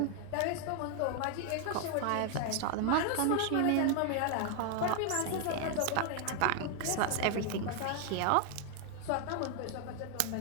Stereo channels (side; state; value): both; different; correlation 0.00